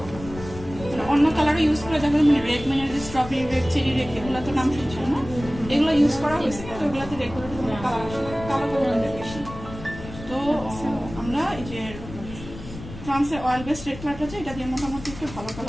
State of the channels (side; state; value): left; noise; rumble, 13 dB below the sound